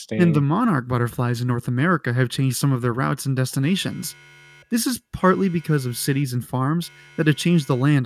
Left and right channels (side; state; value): both; identical; correlation 1.00